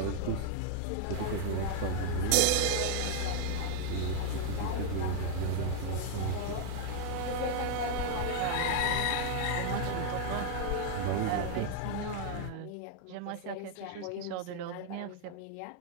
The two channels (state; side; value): different; both; correlation 0.00